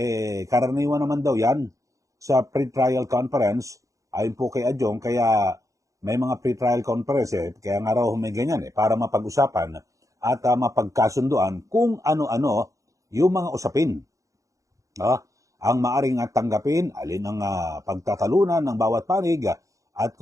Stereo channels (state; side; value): late; left; 0.16 ms